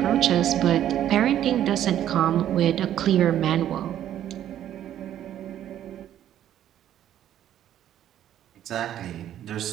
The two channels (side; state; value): left; quieter; 11.3 dB